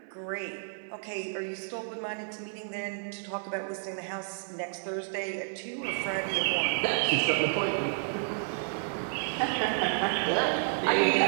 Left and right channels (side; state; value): left; silent; 57 dB below the other